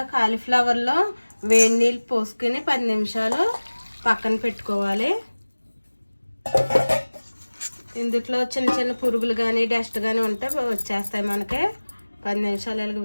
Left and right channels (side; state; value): both; inverted; correlation -1.00